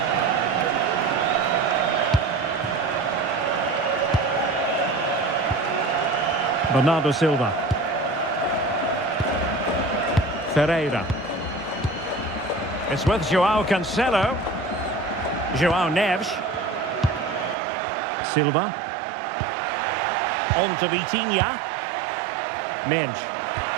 Bernardo Silva. Ferreira. It's with João Cancelo. João Neves. Silva. On to Vitinha. Mendes.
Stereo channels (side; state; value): left; drops out; at 17.6 s